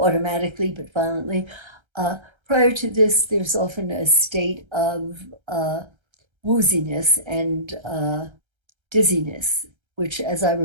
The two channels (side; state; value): left; late; 1.3 ms